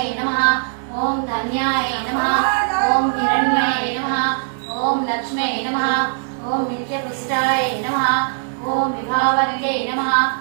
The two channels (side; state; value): left; silent; digital silence